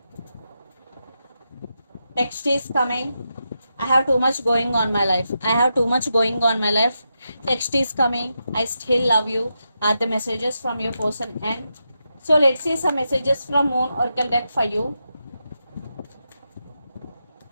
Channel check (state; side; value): inverted; both; correlation -0.86